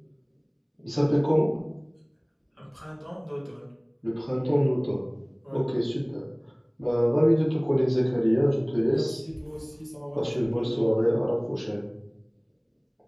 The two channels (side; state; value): both; identical; correlation 1.00